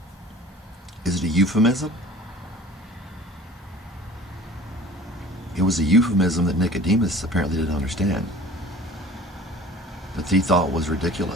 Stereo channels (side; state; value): both; normal; correlation 0.45